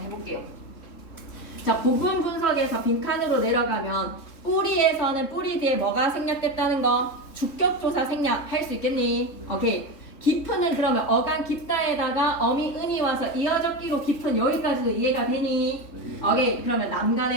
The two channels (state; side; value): late; right; 3.5 ms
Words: 해볼게요. 자, 부분 분석에서 빈칸으로 내려가면 뿌리에서는 뿌리 뒤에 뭐가 생략됐다는 거? 주격조사 생략할 수 있겠니? 오케이. 깊은을 그러면 어간 깊다에다가 어미 은이 와서 이어적기로 깊은 여기까지도 이해가 되니? 오케이. 그러면